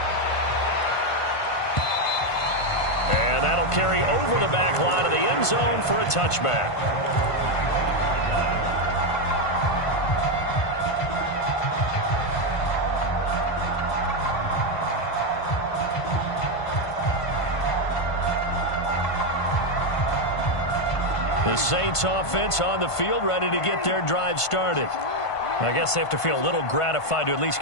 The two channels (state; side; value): late; right; 1.5 ms